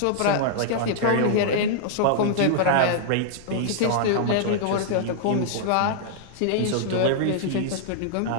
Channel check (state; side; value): different; both; correlation -0.01